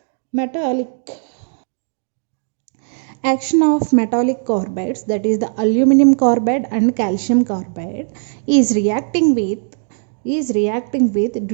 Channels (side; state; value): left; silent; digital silence